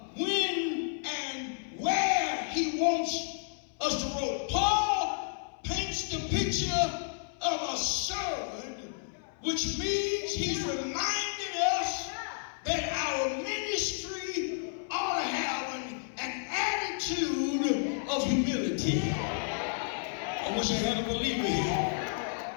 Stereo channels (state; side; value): silent; right; 57 dB below the other